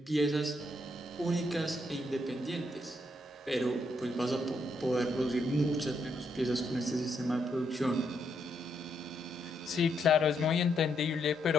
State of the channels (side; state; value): both; normal; correlation 0.77